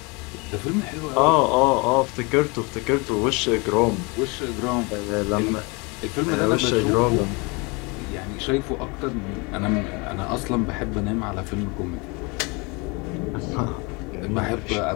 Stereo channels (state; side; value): quieter; right; 28.6 dB